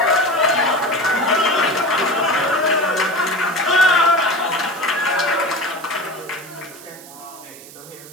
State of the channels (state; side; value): noise; right; hiss, 18 dB below the sound